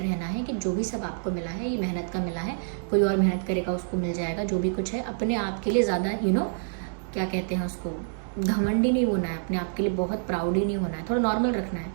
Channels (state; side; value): silent; left; digital silence